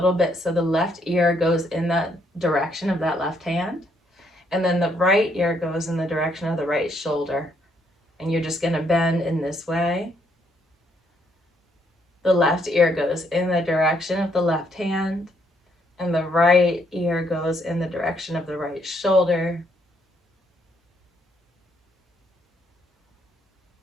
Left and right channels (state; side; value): normal; both; correlation 0.72